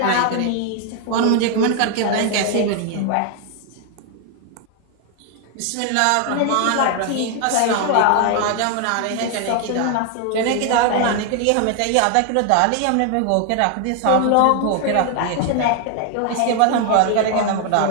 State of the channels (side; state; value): both; different; correlation 0.01